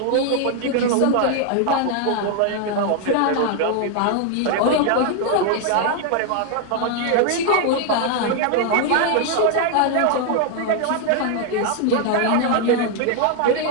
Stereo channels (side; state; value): both; different; correlation 0.00